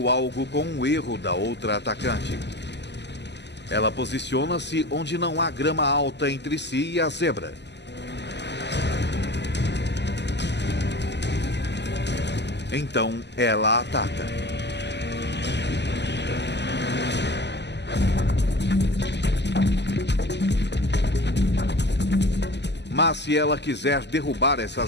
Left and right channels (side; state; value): right; late; 0.50 ms